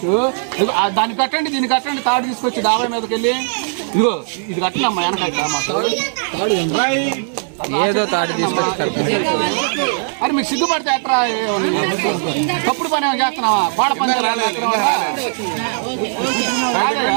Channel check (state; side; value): silent; left; digital silence